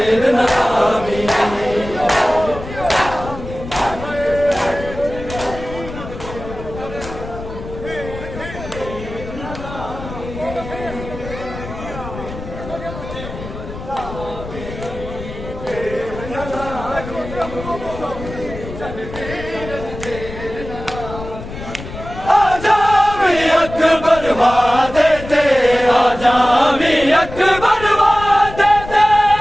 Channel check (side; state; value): left; noise; rumble, 11 dB below the sound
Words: अकबर वादे ते आजा भी अकबर वादे ते